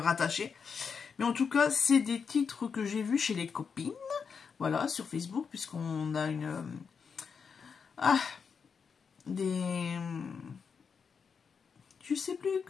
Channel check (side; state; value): right; quieter; 6.0 dB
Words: Mais en tout cas, c'est des titres que j'ai vus chez les copines, voilà, sur Facebook, puisqu'on a je sais plus